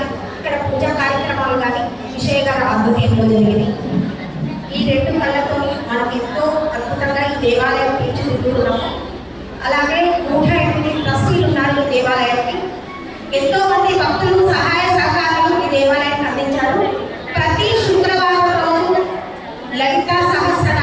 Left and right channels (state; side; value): identical; both; correlation 1.00